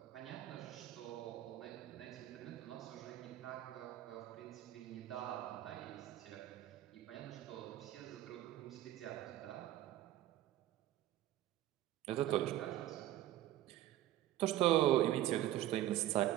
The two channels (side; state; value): left; quieter; 13.8 dB